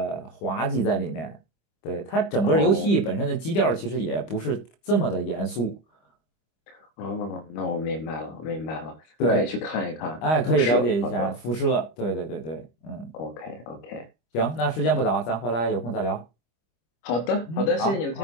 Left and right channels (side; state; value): right; late; 25 ms